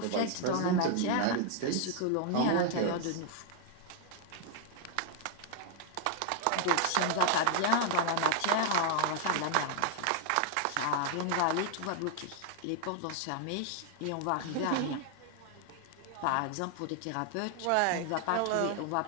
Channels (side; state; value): both; different; correlation 0.00